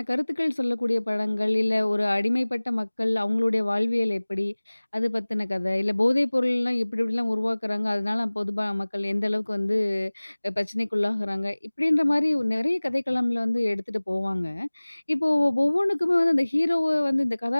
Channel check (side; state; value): both; inverted; correlation -1.00